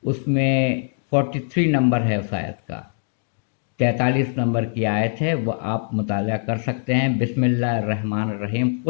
اس میں 43 نمبر ہے اس آیت کا، 43 نمبر کی آیت ہے، وہ آپ مطالعہ کر سکتے ہیں۔ بسم اللہ الرحمن الرحیم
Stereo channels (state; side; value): silent; right; digital silence